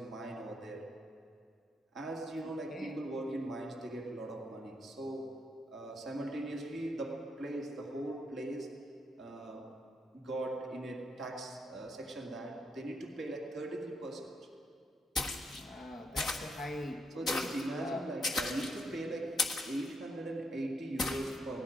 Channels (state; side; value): normal; both; correlation 0.78